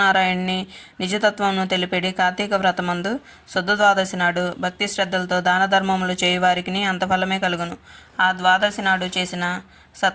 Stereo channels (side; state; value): both; identical; correlation 1.00